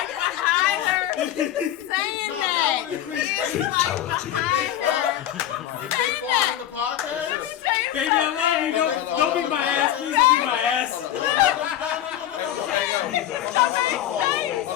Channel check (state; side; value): quieter; right; 11.7 dB